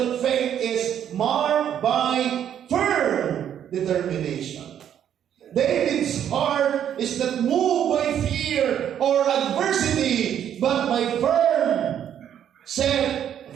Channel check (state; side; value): quieter; left; 9.7 dB